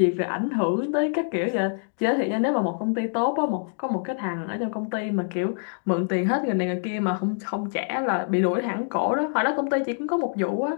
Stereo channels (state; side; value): silent; right; digital silence